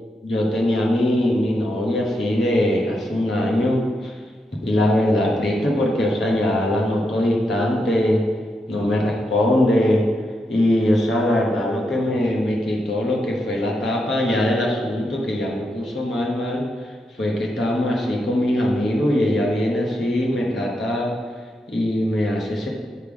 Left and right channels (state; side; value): normal; both; correlation 0.83